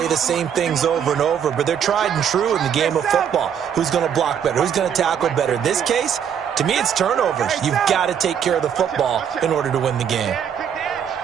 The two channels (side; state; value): left; quieter; 8.3 dB